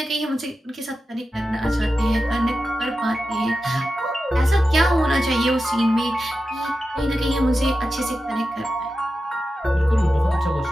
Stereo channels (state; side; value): normal; both; correlation 0.91